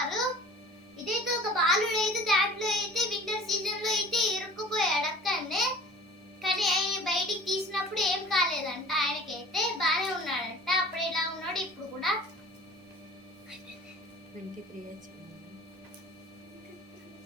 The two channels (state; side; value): normal; both; correlation 0.43